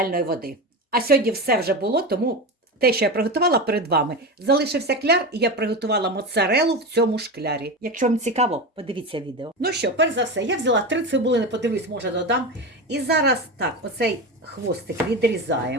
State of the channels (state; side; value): normal; both; correlation 0.22